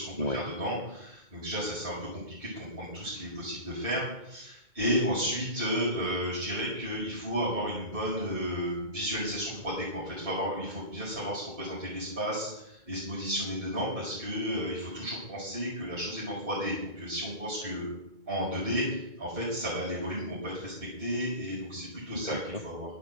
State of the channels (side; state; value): left; late; 2.2 ms